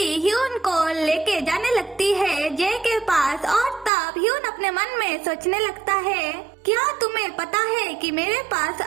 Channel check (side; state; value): left; drops out; at 3.9 s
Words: ह्यून को लेके जाने लगती है जे के पास। और तब ह्यून अपने मन में सोचने लगता है, क्या तुम्हें पता है कि मेरे पास